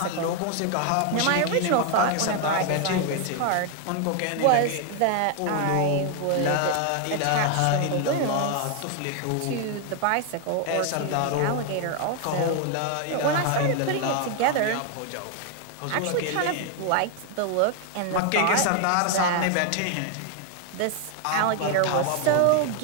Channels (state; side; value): different; both; correlation 0.01